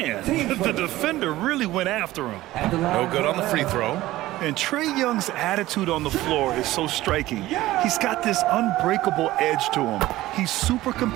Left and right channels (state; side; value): quieter; left; 16.6 dB